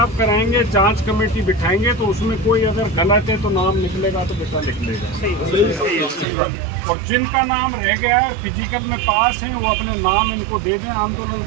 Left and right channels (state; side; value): drops out; left; at 6.2 s